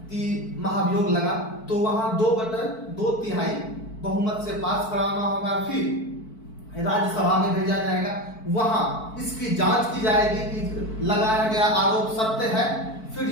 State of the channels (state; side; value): late; right; 4.5 ms